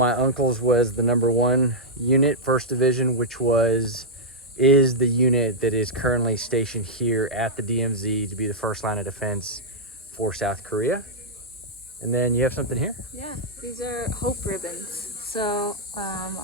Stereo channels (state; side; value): normal; both; correlation -0.07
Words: uncle's was the #1 unit, 1st Division, which is the unit that is currently stationed here at the DMZ to be the first line of defense for South Korea. And then you have something here? Yeah, these are hope ribbons. So